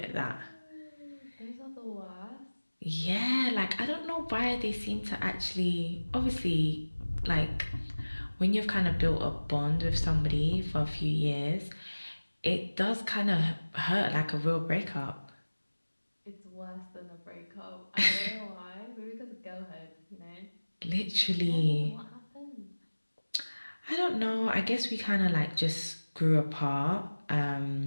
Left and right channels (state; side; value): inverted; both; correlation -1.00